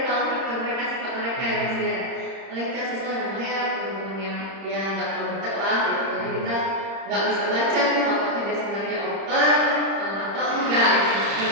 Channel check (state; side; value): late; left; 30 ms